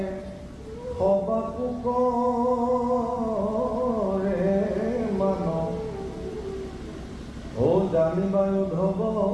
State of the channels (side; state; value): both; identical; correlation 1.00